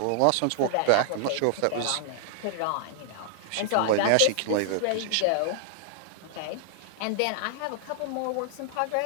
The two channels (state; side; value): different; both; correlation -0.01